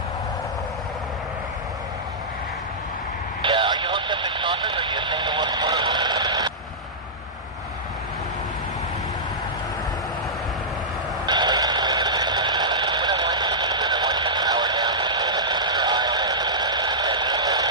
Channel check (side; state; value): both; normal; correlation -0.12